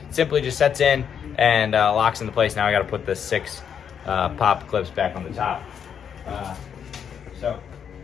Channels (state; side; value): quieter; right; 7.8 dB